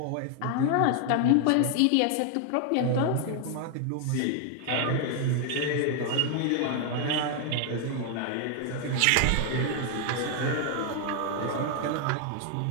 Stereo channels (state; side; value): different; both; correlation 0.00